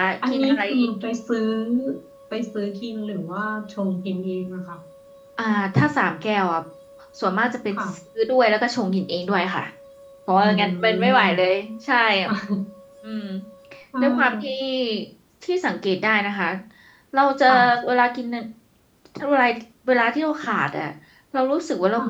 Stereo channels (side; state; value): both; identical; correlation 1.00